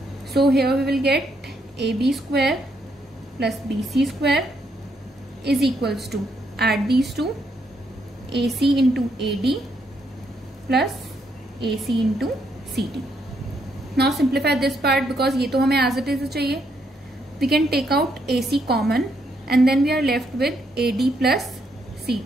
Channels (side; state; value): both; normal; correlation 0.75